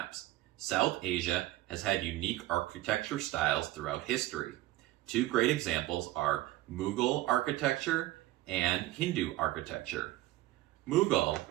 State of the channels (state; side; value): quieter; left; 16.4 dB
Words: South Asia has had unique architecture styles throughout history. Two great examples are Mughal architecture and Hindu architecture. Mughal